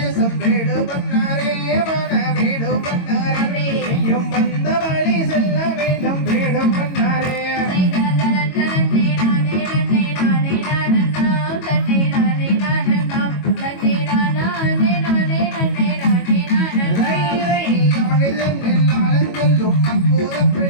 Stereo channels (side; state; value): right; late; 22 ms